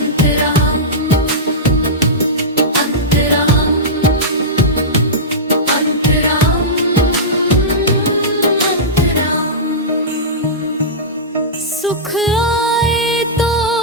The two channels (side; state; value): both; normal; correlation -0.15